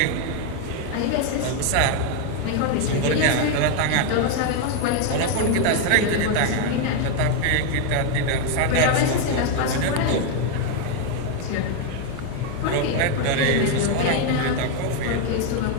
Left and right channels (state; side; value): different; both; correlation 0.01